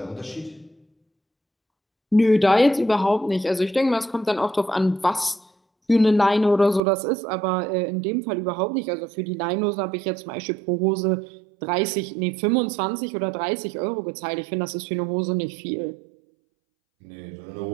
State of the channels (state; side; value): drops out; left; at 6.8 s